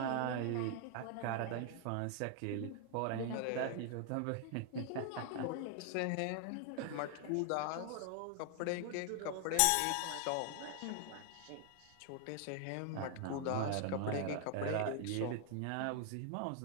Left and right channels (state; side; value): different; both; correlation 0.00